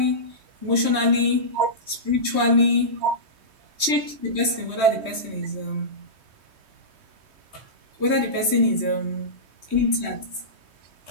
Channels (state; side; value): late; left; 3.2 ms